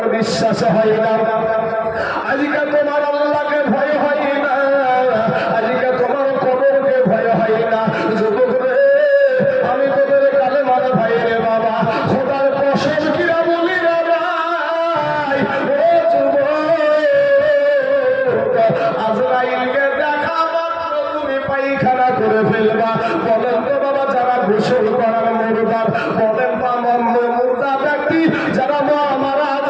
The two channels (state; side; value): identical; both; correlation 1.00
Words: বিশ্বাস হয় না, আজকে তোমার আল্লাহকে ভয় হয় না, করে ফেলবা। বলেন তো বাবা, যারা গোসল করার মুর্দার, বলেন বা মুর্দা ব্যক্তি যারা মারা